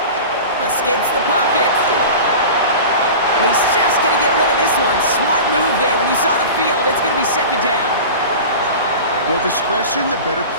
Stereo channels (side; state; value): both; inverted; correlation -0.33